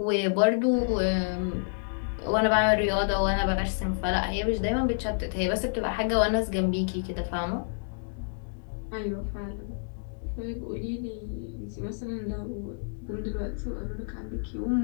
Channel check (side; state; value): right; silent; digital silence